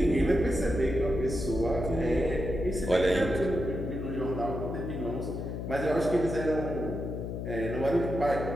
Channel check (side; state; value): left; noise; hum, 5 dB below the sound